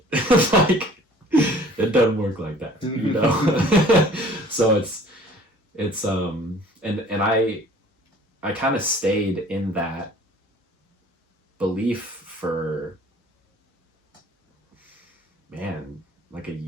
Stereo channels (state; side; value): normal; both; correlation 0.51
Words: Like it doesn't work like that, you know. So it's and I kind of stayed in that belief for, man, like a